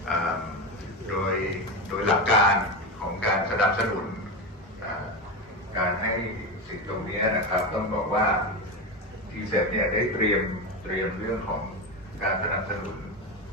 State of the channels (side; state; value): both; normal; correlation 0.17